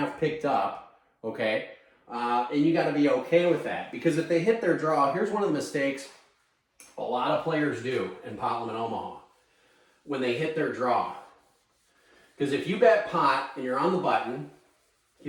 picked up, okay? And you got to be okay with that. Because if they hit their draw, here's one of the mistakes a lot of players do in pot limit Omaha when they hit their draw. Because if you bet pot and you're on the button,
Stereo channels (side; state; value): both; identical; correlation 1.00